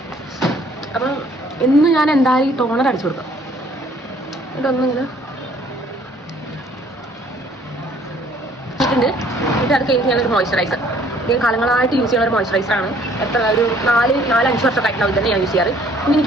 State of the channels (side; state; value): both; normal; correlation 0.59